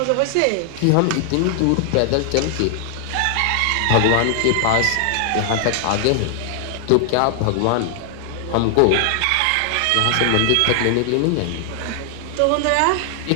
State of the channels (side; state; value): both; different; correlation 0.00